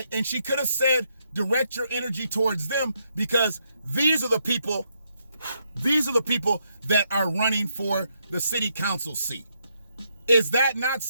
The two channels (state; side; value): inverted; both; correlation -0.78